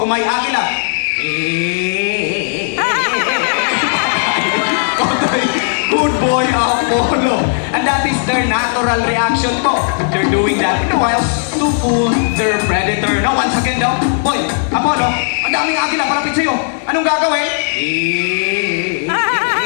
may agila? Good boy, Apollo. And that is their natural reaction po. They're doing that in the wild to fool their predator. Now, once again daw, boy, Apollo, ang daming agila palapit sa'yo. Anong gagawin?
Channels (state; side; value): silent; right; 56 dB below the other